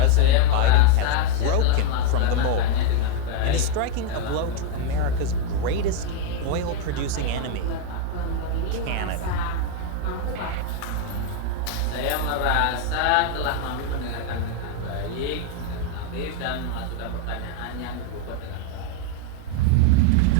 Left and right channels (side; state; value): both; different; correlation 0.01